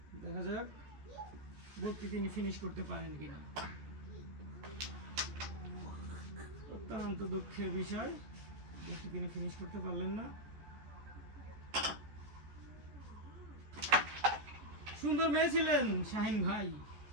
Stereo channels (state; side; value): late; left; 14 ms